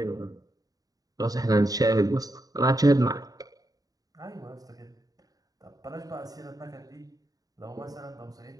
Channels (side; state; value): left; late; 0.18 ms